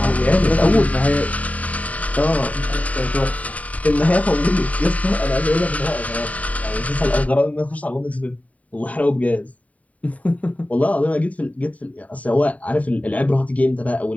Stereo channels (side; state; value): right; late; 0.069 ms